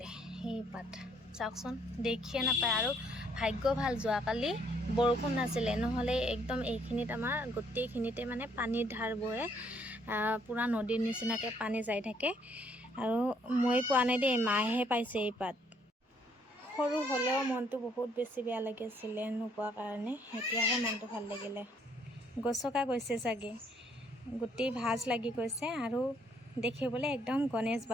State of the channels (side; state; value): both; normal; correlation 0.67